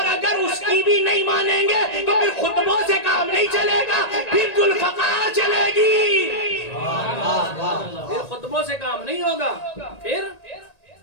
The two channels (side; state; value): right; late; 1.8 ms